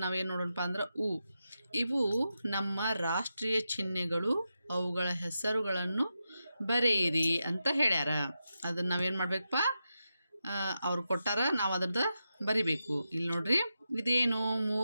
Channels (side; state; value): both; inverted; correlation -0.89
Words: ನಾವೇನು ನೋಡೋಣಪ್ಪ ಅಂದ್ರೆ ಇವು ನಮ್ಮ ರಾಷ್ಟ್ರೀಯ ಚಿಹ್ನೆಗಳು, ಅವುಗಳ ಹೆಸರುಗಳನ್ನು ಬರೆಯಿರಿ ಅಂತ ಹೇಳ್ಯಾರ. ಅದನ್ನು ನಾವೇನು ಮಾಡಬೇಕಪ್ಪ, ಅವ್ರು ಕೊಟ್ಟಾರ, ನಾವು ಅದ್ರದ್ದು ಬರಿಬೇಕು. ಇಲ್ಲಿ ನೋಡ್ರಿ, ಇದೇನು